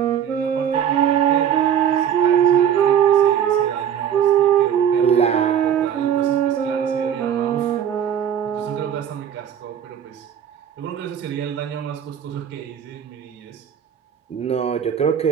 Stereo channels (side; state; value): left; quieter; 9.1 dB